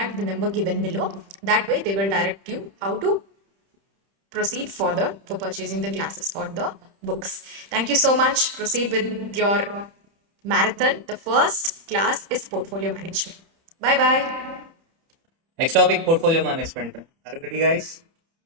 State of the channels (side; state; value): left; late; 30 ms